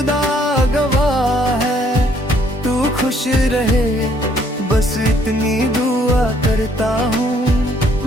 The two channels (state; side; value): normal; both; correlation 0.65